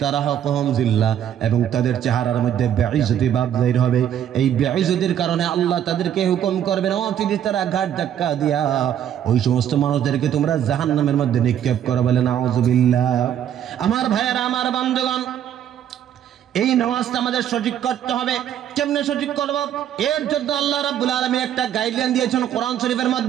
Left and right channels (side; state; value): left; quieter; 10.1 dB